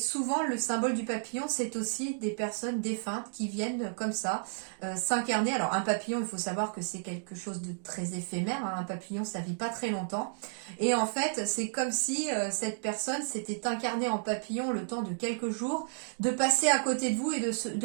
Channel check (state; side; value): silent; left; digital silence